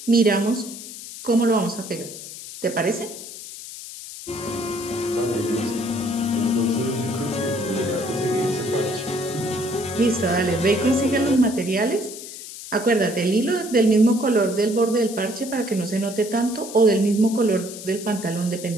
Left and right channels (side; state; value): left; noise; hiss, 12 dB below the sound